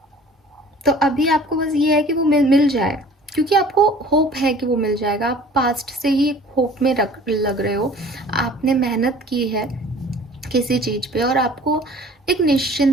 तो अभी आपको बस ये है कि वो मिल जाए, क्योंकि आपको होप है कि वो मिल जाएगा। आप पास्ट से ही होप में लग रहे हो, आपने मेहनत की है किसी चीज़ पे, और आपको एक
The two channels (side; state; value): both; normal; correlation 0.48